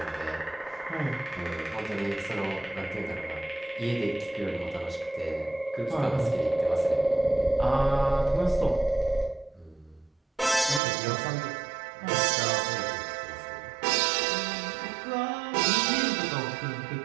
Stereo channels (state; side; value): drops out; left; at 10.8 s